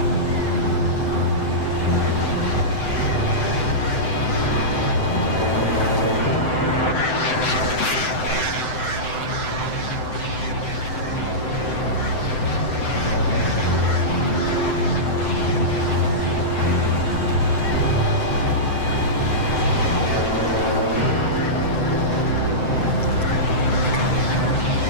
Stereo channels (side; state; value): right; late; 7.8 ms